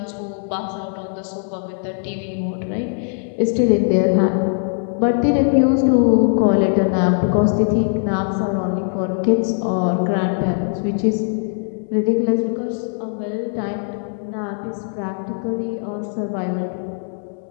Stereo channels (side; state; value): right; silent; digital silence